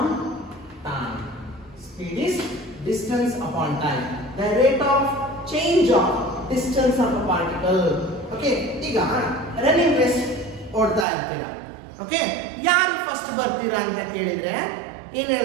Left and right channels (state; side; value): drops out; left; at 11.1 s